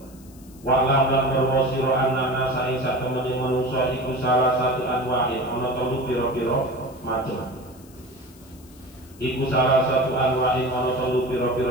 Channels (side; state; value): left; noise; hiss, 25 dB below the sound